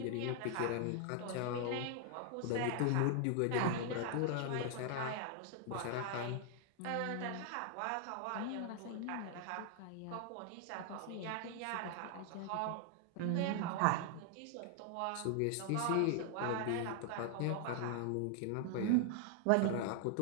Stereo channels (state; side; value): different; both; correlation 0.00